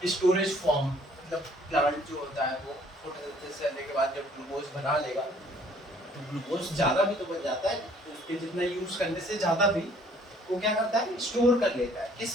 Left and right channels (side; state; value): both; normal; correlation 0.59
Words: स्टोरेज फॉर्म। मतलब प्लांट जो होता है वो फोटोसिंथेसिस करने के बाद जब ग्लूकोज बना लेगा तो ग्लूकोज ज़्यादा भी तो बन जाता है, उसके जितना यूज करने से ज़्यादा भी वो क्या करता है, स्टोर कर लेता है।